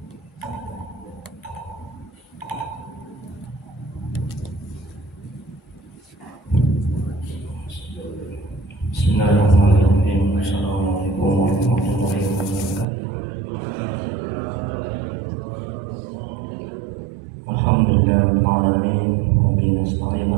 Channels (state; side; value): drops out; left; at 12.9 s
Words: Assalamualaikum warahmatullahi wabarakatuh. Alhamdulillahirabbil alamin wa bihi nasta'in